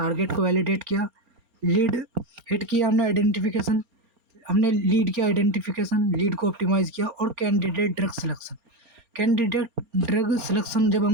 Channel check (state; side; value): late; left; 4.3 ms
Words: को वैलिडेट किया, लीड हिट किया हमने आइडेंटिफिकेशन, हमने लीड किया आइडेंटिफिकेशन, लीड को ऑप्टिमाइज़ किया और candidate drug selection. Candidate drug selection जब